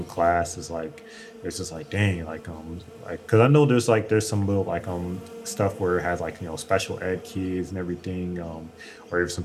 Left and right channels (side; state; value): both; identical; correlation 1.00